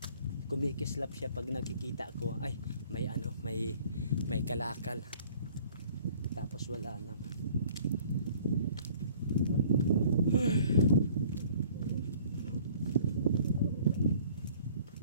Kumikislap siya pag nakikita ko. Ay, may ano, may kalakal. Tapos wala na.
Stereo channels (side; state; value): both; inverted; correlation -0.54